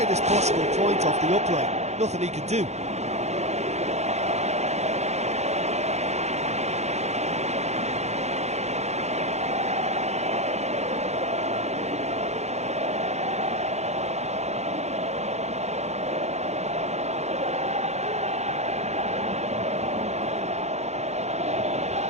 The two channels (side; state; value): left; late; 0.32 ms